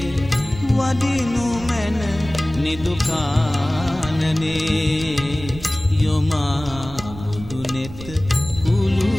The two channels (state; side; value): noise; right; rumble, 14 dB below the sound